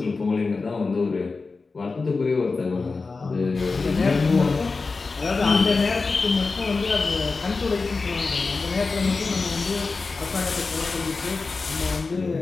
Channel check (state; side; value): quieter; right; 4.1 dB